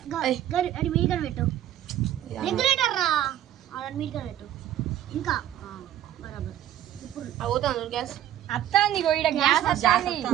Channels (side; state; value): left; quieter; 12.0 dB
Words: అది మీడిగా పెట్టు, రెగ్యులేటర్ రా, అది మీడిగా పెట్టు. ఇంకా బరాబర్ ఇప్పుడు అవుతాను గ్యాస్ అత్తాంది గోయిడ గ్యాస్ అత్తాంది.